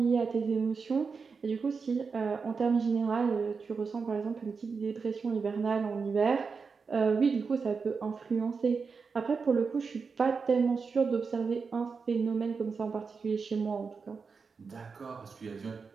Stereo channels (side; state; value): left; quieter; 5.1 dB